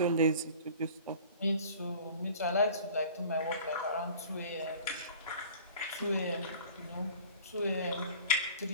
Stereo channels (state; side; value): inverted; both; correlation -0.46